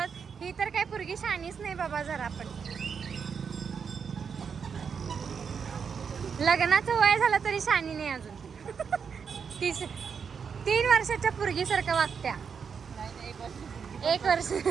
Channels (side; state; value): left; quieter; 6.4 dB